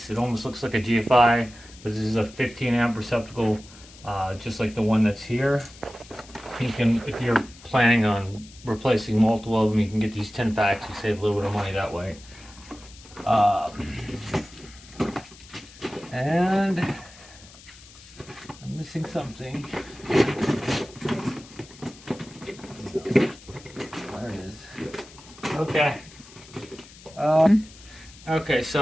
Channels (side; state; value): left; noise; hiss, 21 dB below the sound